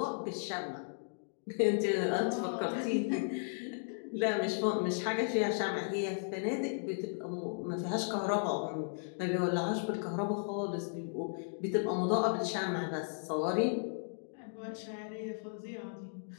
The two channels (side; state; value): right; silent; digital silence